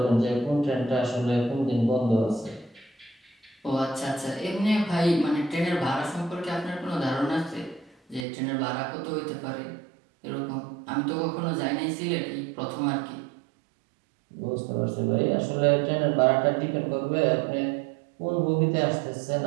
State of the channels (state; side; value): drops out; left; at 8.2 s